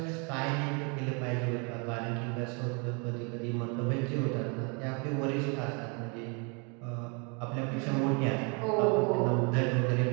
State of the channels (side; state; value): left; quieter; 33.9 dB